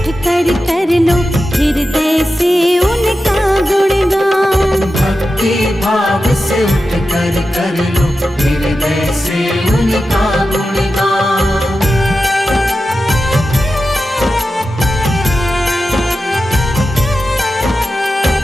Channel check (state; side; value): normal; both; correlation 0.91